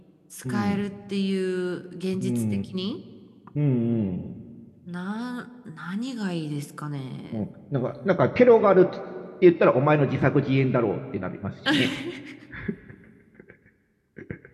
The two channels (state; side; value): identical; both; correlation 1.00